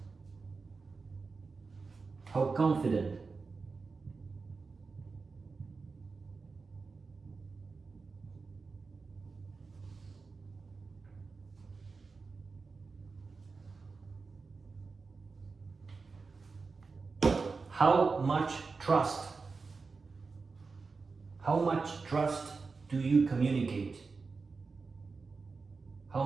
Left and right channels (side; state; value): left; quieter; 4.4 dB